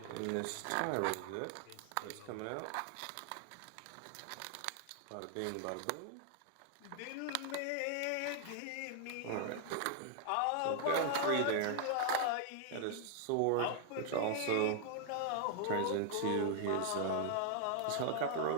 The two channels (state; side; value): different; both; correlation 0.00